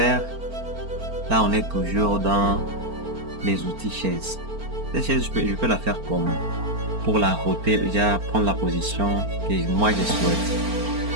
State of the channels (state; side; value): late; left; 4.4 ms